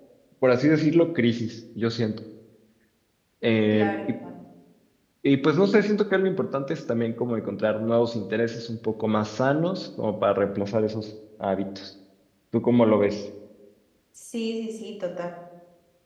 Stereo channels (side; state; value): both; identical; correlation 1.00